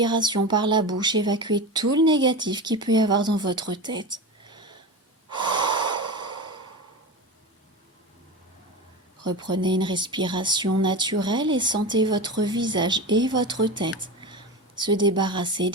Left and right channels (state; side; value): normal; both; correlation 0.25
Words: par la bouche, évacuez tout le négatif qu'il peut y avoir dans votre tête. Reprenez une respiration naturelle et sentez votre visage et votre tête se débarrasser